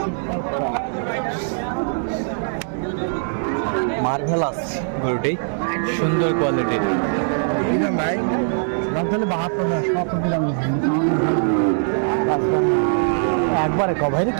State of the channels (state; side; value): silent; left; digital silence